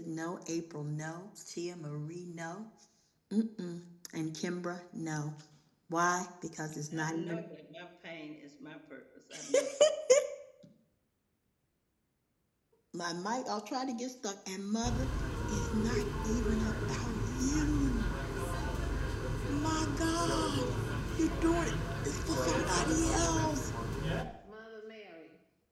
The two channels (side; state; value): both; identical; correlation 1.00